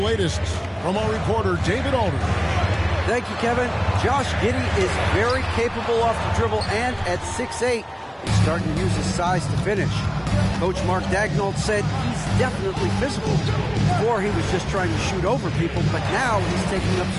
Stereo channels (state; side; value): identical; both; correlation 1.00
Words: from our reporter, David Alder. Thank you, Kevin. Josh Giddey is very capable off the dribble, and at 6'8", he's starting to use his size to finish. Coach Mark Daigneault said he's definitely physical. Before, he was just trying to shoot over people, but now he's taking up